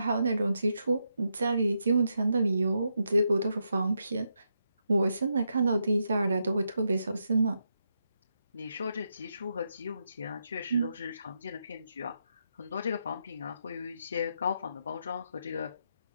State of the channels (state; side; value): inverted; both; correlation -0.82